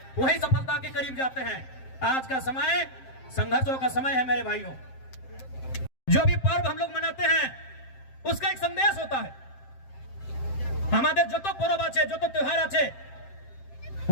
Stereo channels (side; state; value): right; late; 7.6 ms